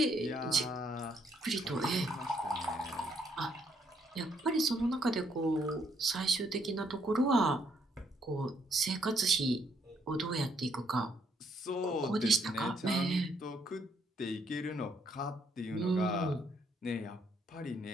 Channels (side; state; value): both; normal; correlation 0.71